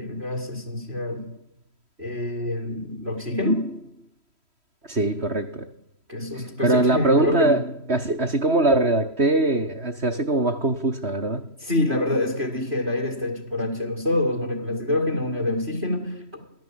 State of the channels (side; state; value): left; late; 3.1 ms